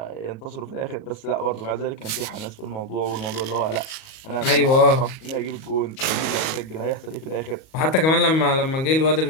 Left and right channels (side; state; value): right; late; 37 ms